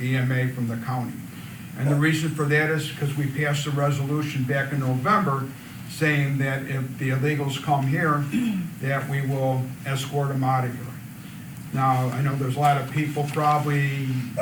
EMA from the county. And the reason for that is because we passed a resolution back in November saying that if the illegals come here, that we will escort them out of here. Now, I know there's a lot of people probably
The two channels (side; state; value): both; identical; correlation 1.00